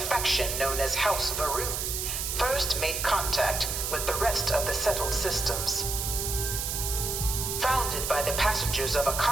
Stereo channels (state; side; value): noise; right; hiss, 2 dB below the sound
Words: known as House Varun first made contact with the rest of the settled systems. Founded by the passengers of a